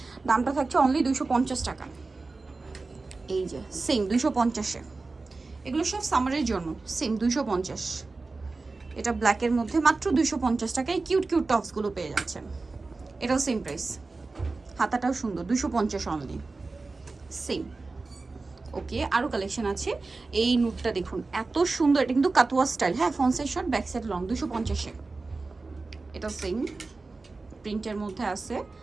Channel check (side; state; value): left; quieter; 3.7 dB